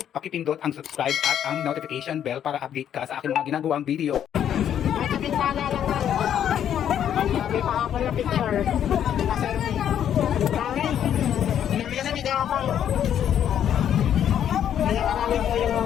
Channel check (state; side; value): quieter; right; 9.7 dB